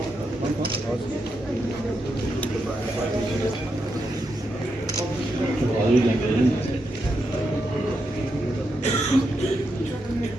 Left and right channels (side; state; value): both; normal; correlation 0.84